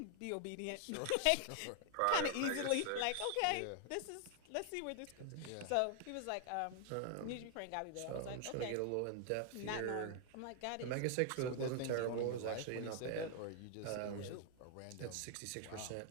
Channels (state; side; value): different; both; correlation 0.00